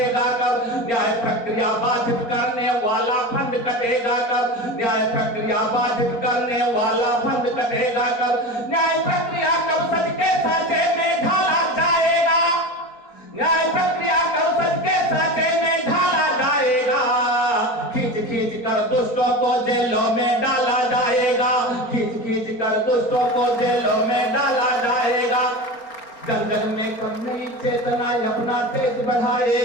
कब। न्याय प्रक्रिया बाधित करने वाला फंड कटेगा कब, न्याय प्रक्रिया बाधित करने वाला फंड कटेगा कब। न्याय प्रक्रिया कब सच के साँचे में ढाला जाएगा, न्याय प्रक्रिया कब सच के साँचे में ढाला जाएगा। खींच खींच कर दुष्टों को जेलों में डाला जाएगा, खींच खींच कर दुष्टों को जेलों में डाला जाएगा। जन जन में कब नई चेतना अपना तेज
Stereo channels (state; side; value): late; right; 4.3 ms